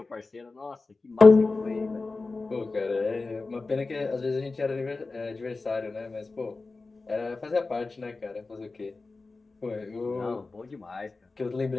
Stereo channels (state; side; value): quieter; right; 3.7 dB